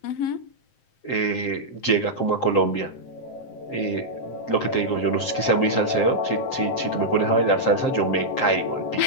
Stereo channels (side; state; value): right; late; 7.6 ms